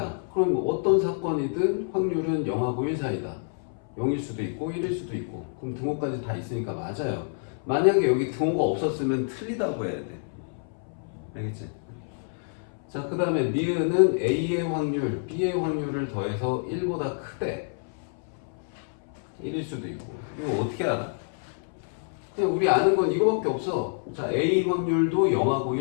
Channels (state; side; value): silent; right; 60 dB below the other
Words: 그럼 어떤 사건이든 확률은 0하고 1 사이다. 0일 수도 있고 1일 수도 있고. 그럼 등호까지 다 있으니까 맞아요. 만약에 여기 등호가 없었으면 틀리다고 해야 돼. 알겠지? 자, 그 다음에 니은은 A의 확률, B의 확률을 더해서 1보다 크대. 1일 수도 있고. 이거 어떻게 알아? 그냥 우리 아는 건 이거밖에 없어. 자, A 확률도 0하고